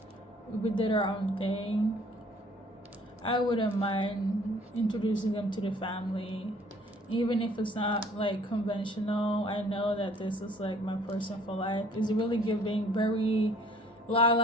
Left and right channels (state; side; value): normal; both; correlation 0.57